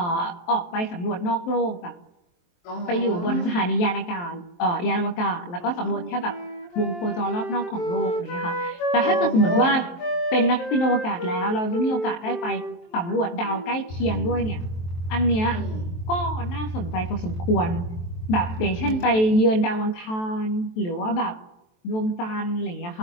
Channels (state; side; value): late; right; 23 ms